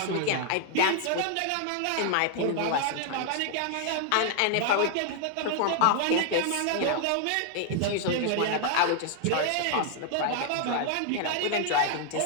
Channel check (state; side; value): different; both; correlation 0.00